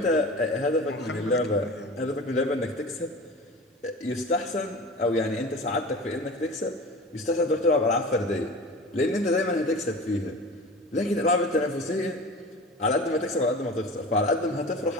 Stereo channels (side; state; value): both; normal; correlation 0.36